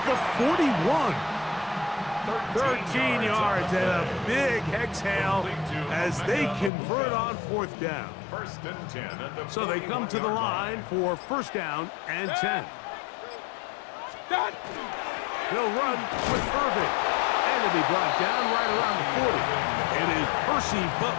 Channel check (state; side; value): drops out; right; at 6.7 s